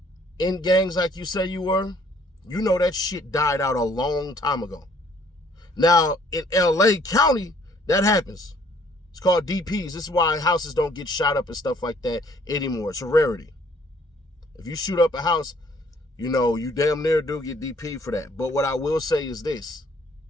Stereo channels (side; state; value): both; normal; correlation 0.61